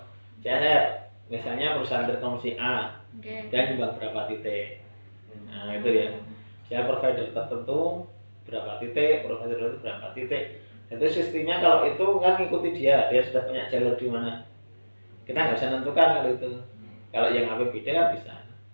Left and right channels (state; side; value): inverted; both; correlation -1.00